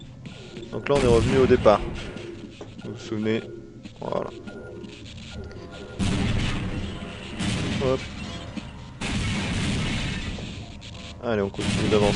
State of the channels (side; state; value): both; identical; correlation 1.00